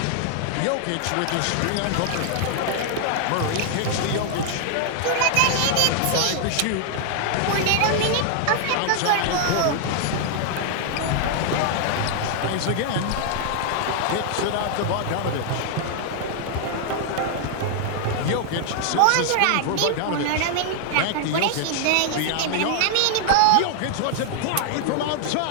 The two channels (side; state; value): both; different; correlation 0.00